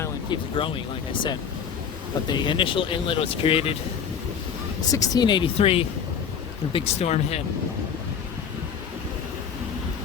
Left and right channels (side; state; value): right; quieter; 7.3 dB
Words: keeps growing, like I said. But the initial inlet was created 1683, the big storm hit.